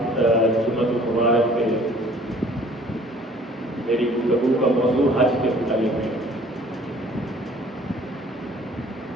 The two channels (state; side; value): normal; both; correlation 0.54